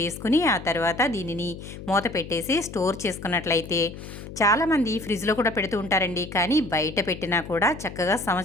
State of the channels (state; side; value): noise; left; hum, 12 dB below the sound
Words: ఆ తర్వాత దీనిని మూత పెట్టేసి స్టోర్ చేసుకున్నట్లయితే చాలామంది ఫ్రిడ్జ్లో కూడా పెడుతూ ఉంటారండి. కానీ బయట పెట్టినా కూడా చక్కగా